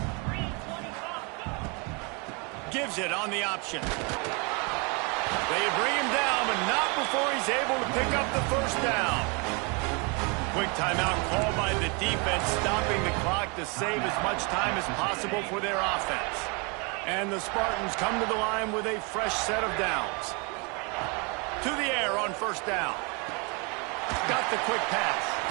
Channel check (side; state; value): left; quieter; 31.7 dB